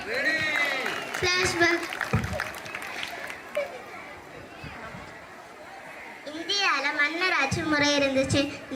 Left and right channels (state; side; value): identical; both; correlation 1.00